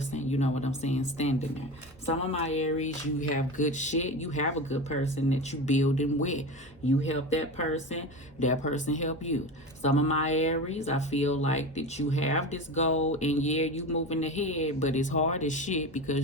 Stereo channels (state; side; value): normal; both; correlation 0.26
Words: you know what I'm saying, standing there. Some of my Aries, you have good shit. You have a good person that you building with. You help that person help you. Some of my Aries, I feel like that you have this goal, and yeah, you moving ahead, but it's hard as shit